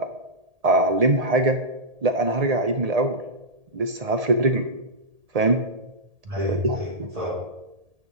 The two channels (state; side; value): late; left; 1.8 ms